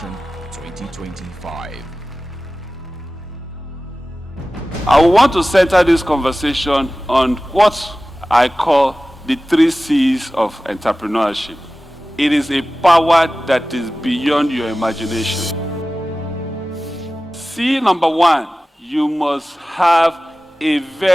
2025. I want to center this conversation on what I call the 3 C's of entrepreneurship. It is a power that is beyond your imagination. C number 1, you must have a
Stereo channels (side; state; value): both; normal; correlation 0.96